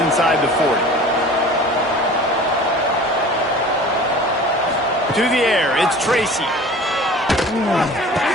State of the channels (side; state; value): both; normal; correlation 0.42